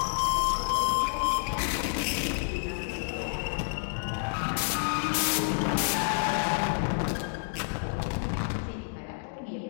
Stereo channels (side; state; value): right; silent; digital silence